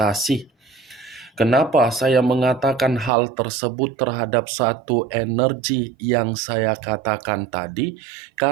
Kenapa saya mengatakan hal tersebut terhadap satu energi yang saya katakan tadi?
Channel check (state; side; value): drops out; left; at 3.1 s